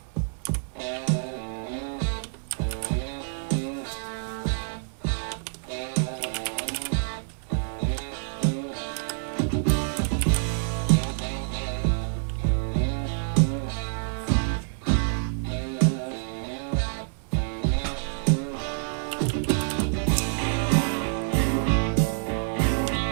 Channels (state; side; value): silent; left; digital silence